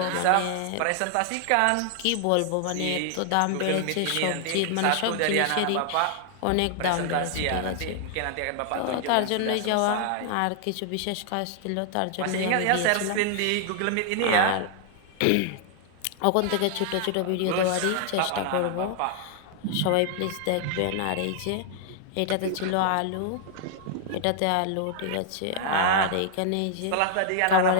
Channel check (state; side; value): different; both; correlation 0.00